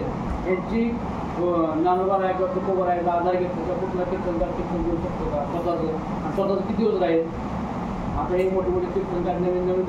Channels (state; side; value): identical; both; correlation 1.00